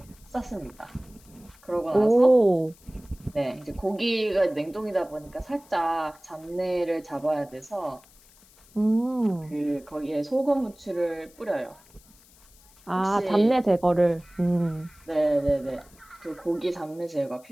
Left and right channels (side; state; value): left; noise; hiss, 27 dB below the sound